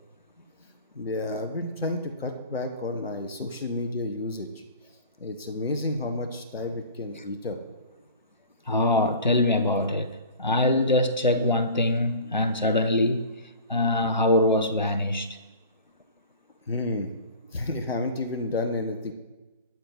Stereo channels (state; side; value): inverted; both; correlation -0.40